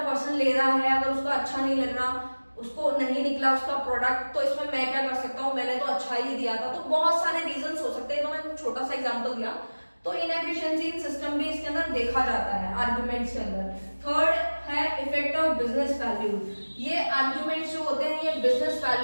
पर्सन ले रहा है, अगर उसको अच्छा नहीं लग रहा, उसको नहीं निकला उसका प्रोडक्ट, तो इसमें मैं क्या कर सकता हूँ, मैंने तो अच्छा ही दिया था। तो बहुत सारे रीजन हो सकते हैं, तो मैं छोटा सा एग्जाम्पल दिया। तो इनएफिशिएंसी इन सिस्टम भी इसके अंदर देखा जाता है आर्गुमेंट्स के अंदर। थर्ड है इफेक्ट ऑफ बिजनेस वैल्यू। ये आर्गुमेंट्स जो होते हैं ये बिजनेस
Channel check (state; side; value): inverted; both; correlation -1.00